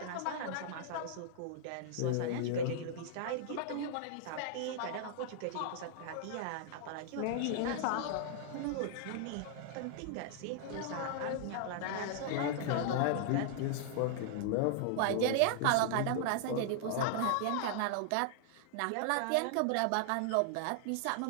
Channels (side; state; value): both; different; correlation -0.01